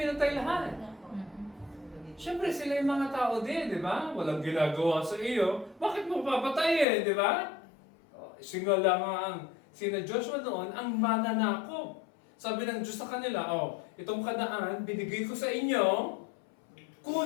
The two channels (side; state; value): right; drops out; at 6.9 s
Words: lahat. Siyempre, sila yung mga tao din, di ba? Walang ginagawa sa iyo. Bakit mo papatayin, di ba? Singala nga sina Joshua noon, ang mananakop. Sabi ng Diyos sa kanila, itong Kanaan, binigay ko sa inyo,